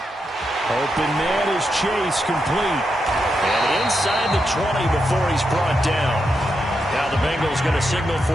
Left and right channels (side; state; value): both; normal; correlation 0.85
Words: Open man is Chase, complete. And inside the 20 before he's brought down. Now the Bengals going to signal